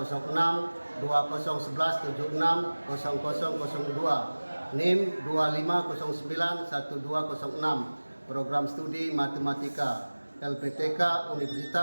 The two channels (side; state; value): both; inverted; correlation -1.00